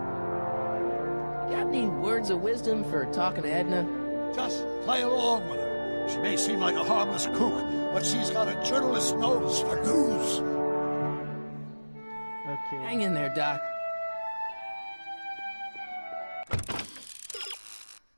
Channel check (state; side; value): inverted; both; correlation -1.00